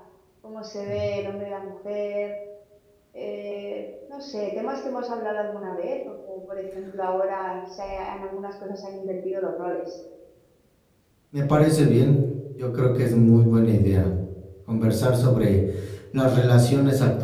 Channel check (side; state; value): both; identical; correlation 1.00